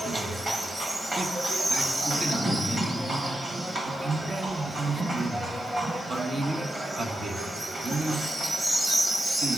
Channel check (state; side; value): normal; both; correlation 0.87